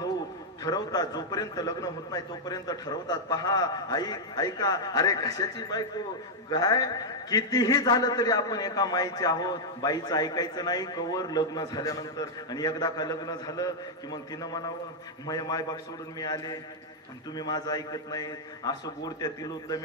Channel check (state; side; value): normal; both; correlation -0.04